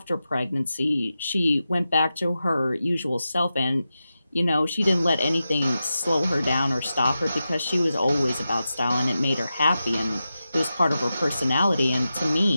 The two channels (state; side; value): inverted; both; correlation -0.91